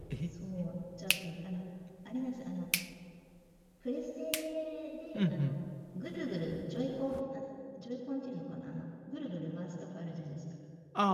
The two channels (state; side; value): identical; both; correlation 1.00